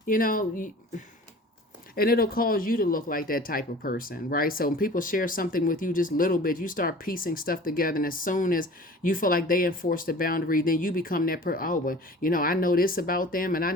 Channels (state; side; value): normal; both; correlation 0.43